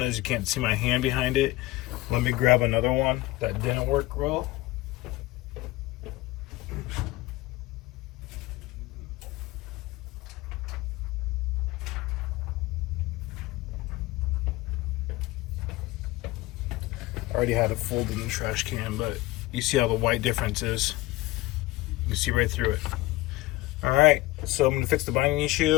is. You can't see my hand behind it. Let me grab another one that didn't work well. I already had it folded in the trash can, but you see how the white difference is. You can see right through it. All right, so I'm gonna fix the binding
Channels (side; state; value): right; quieter; 18.6 dB